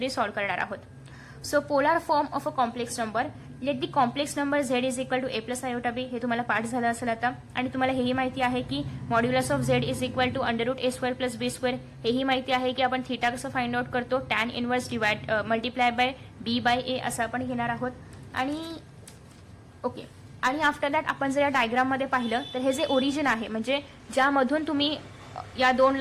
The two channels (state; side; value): identical; both; correlation 1.00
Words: सॉल्व्ह करणार आहोत. So polar form of a complex number. Let the complex number z is equal to a + iota b. हे तुम्हाला पाठ झालं असेल आता. आणि तुम्हाला हेही माहिती आहे की modulus of z is equal to √a² + b². हेही माहिती आहे की आपण थीटा कसं फाइंड आउट करतो? Tan inverse multiply by b by a असं आपण घेणार आहोत. आणि ओके. आणि आफ्टर दॅट आपण जर या डायग्राममध्ये पाहिलं तर हे जे ओरिजिन आहे, म्हणजे ज्यामधून तुम्ही या 2